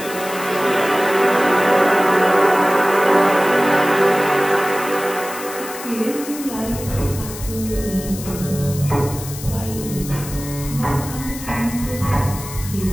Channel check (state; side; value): noise; left; hiss, 12 dB below the sound